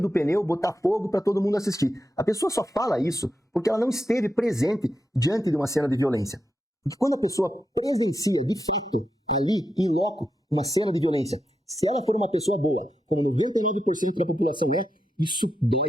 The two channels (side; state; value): both; normal; correlation 0.86